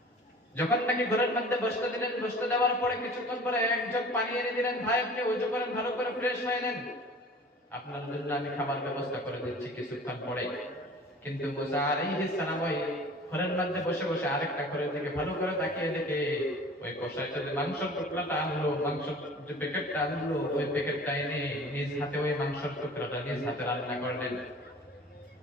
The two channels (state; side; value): normal; both; correlation 0.44